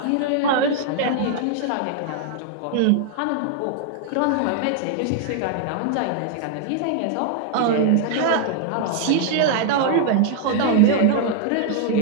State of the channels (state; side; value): different; both; correlation 0.00